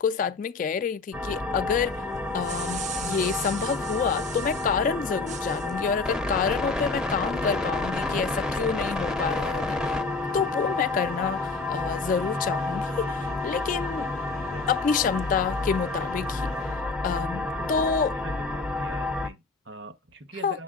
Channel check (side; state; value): right; quieter; 4.0 dB